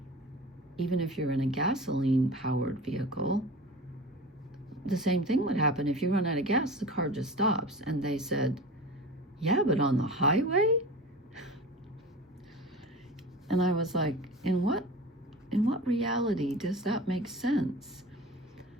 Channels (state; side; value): normal; both; correlation 0.34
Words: even if you're in a gasoline-powered vehicle, the same thing would happen. If you run out of gas, the car just stops. And they said, yeah, but on the highway? And I was like, in what reality does that make sense?